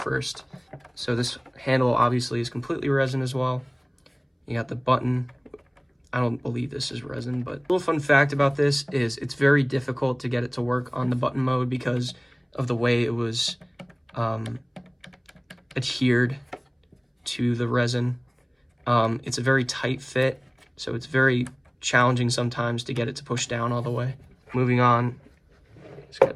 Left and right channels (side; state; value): both; identical; correlation 1.00